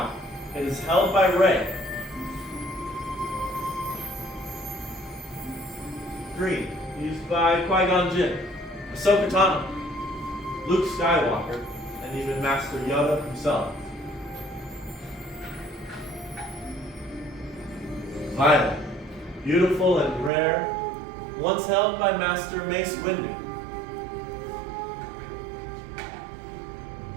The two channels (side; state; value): left; drops out; at 20.3 s